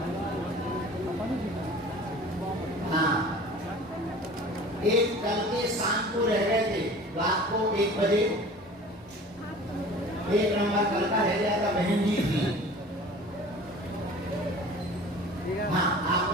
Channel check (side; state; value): both; normal; correlation 0.43